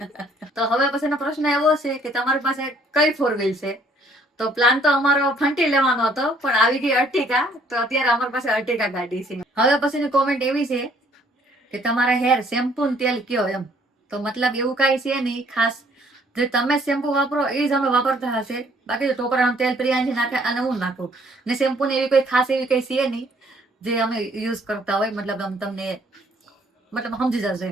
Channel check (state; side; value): normal; both; correlation 0.62